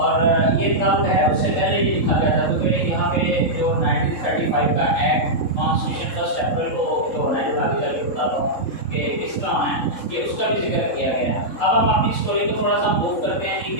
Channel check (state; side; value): late; right; 3.6 ms